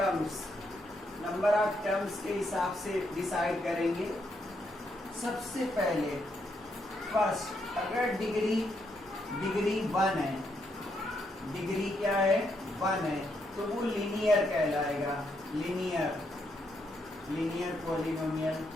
number of terms के हिसाब से डिसाइड करेंगे। सबसे पहले फर्स्ट, अगर डिग्री 1 है, डिग्री क्या है 1 है, तो वो लीनियर कहलाएगा। Linear polynomial.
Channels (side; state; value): left; noise; rumble, 29 dB below the sound